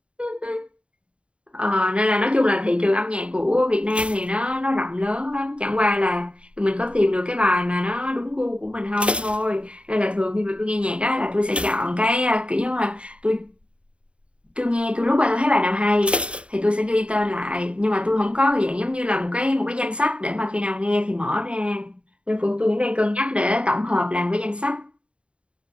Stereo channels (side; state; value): left; late; 0.059 ms